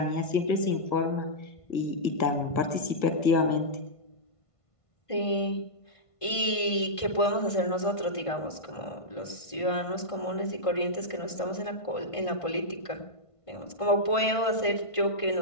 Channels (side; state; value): right; late; 1.5 ms